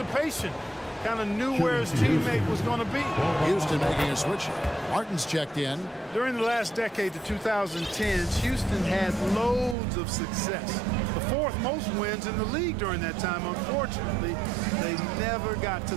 Kind of knew where his teammate was going to be. Houston making a switch. Martin's checked in. During the last decade, the 2010s, Houston had loads of success. The 4th most wins in the league during that time. Unfortunately, they never got to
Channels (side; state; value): left; drops out; at 9.8 s